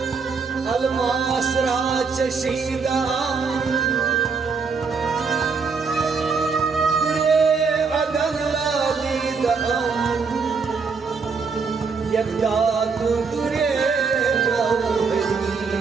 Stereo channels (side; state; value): left; quieter; 5.1 dB